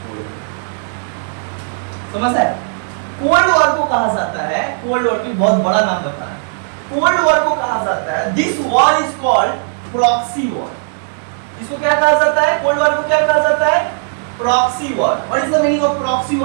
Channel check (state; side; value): silent; left; digital silence